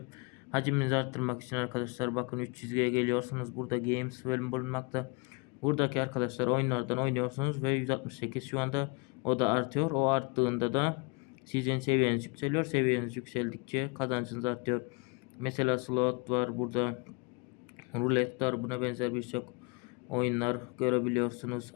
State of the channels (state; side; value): quieter; right; 29.6 dB